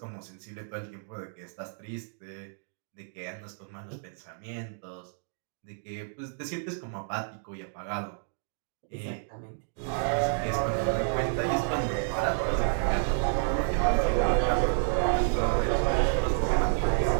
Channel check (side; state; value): left; silent; digital silence